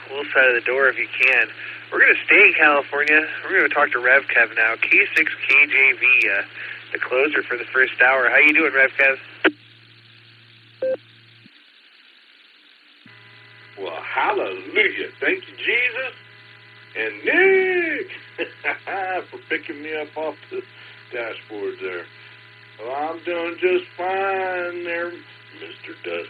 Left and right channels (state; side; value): identical; both; correlation 1.00